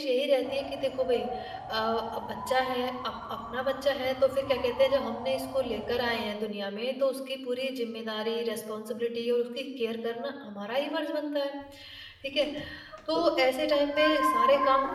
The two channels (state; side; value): identical; both; correlation 1.00